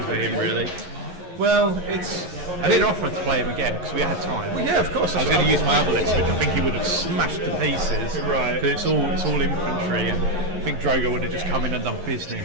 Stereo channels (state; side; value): late; left; 11 ms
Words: for him, really. Well, I didn't offer to play him again because we had time. Well, yeah, of course. I was going to use my other list, which I think he would have smashed to pieces. Right. Because it's all infantry, and I think Drogo would have just come in and done business.